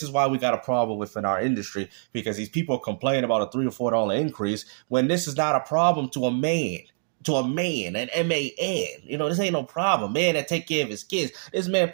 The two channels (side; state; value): left; silent; digital silence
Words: is why we got a problem within our industry, because these people complain about a $3 or $4 increase when this is not a problem to a man. To a man, an M-A-N. This ain't no problem. Man that take care of his kids. This man